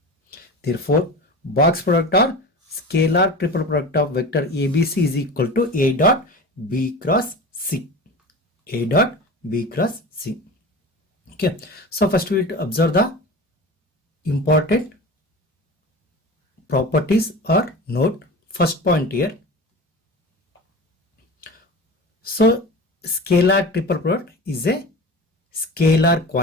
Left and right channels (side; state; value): both; normal; correlation 0.33